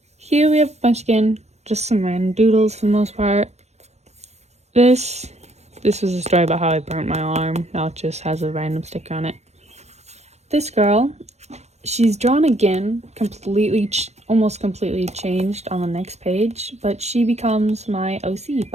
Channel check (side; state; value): left; late; 0.32 ms